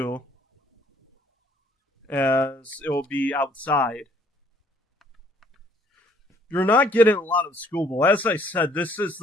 as it will be outside. You're not getting a lot of schoolball. As I said, this is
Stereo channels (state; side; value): normal; both; correlation 0.62